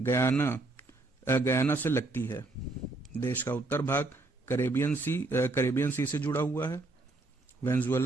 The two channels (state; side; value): quieter; left; 3.1 dB